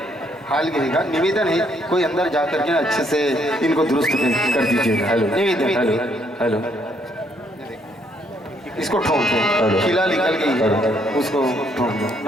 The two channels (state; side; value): normal; both; correlation 0.70